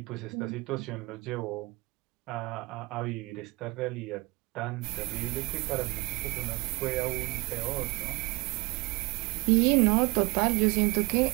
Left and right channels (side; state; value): left; quieter; 24.5 dB